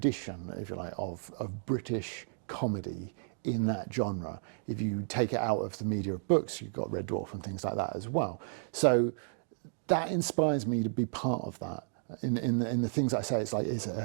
if you like, of British comedy in that genre. If you take it out of the media of books, you've got Red Dwarf and things like that as well. So that inspires me to be part of that. In the things I say, it's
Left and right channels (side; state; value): left; silent; digital silence